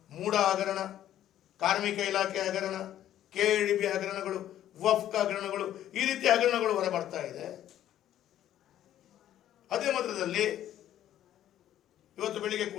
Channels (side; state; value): right; quieter; 11.8 dB